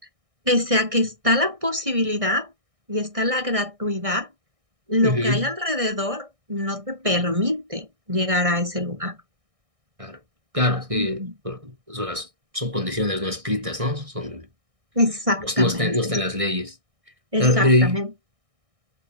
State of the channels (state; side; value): late; left; 1.6 ms